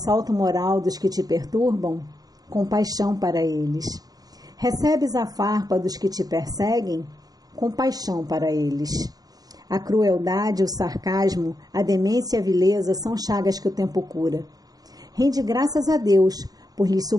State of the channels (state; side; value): late; left; 0.18 ms